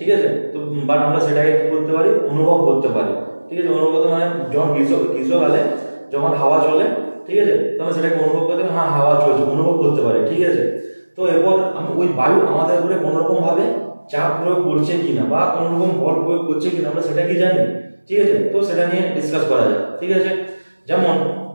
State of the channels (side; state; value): both; inverted; correlation -1.00